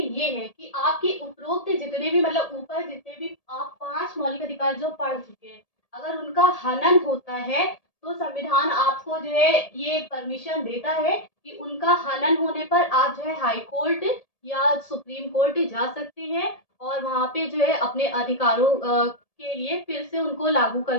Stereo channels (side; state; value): right; late; 1.7 ms